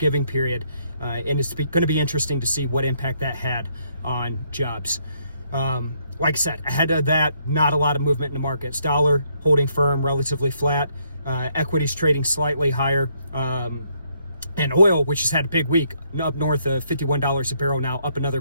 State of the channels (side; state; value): both; inverted; correlation -0.72